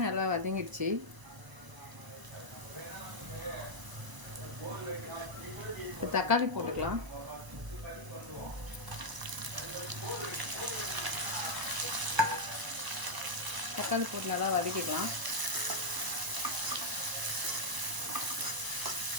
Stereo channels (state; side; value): late; left; 1.0 ms